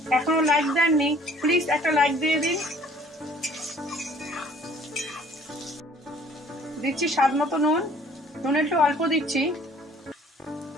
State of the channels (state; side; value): normal; both; correlation 0.55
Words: এখনো লাইক দেননি, প্লিজ একটা লাইক দিয়ে দিন। দিচ্ছি স্বাদ মতো নুন, নুন একটু অল্প দিচ্ছি।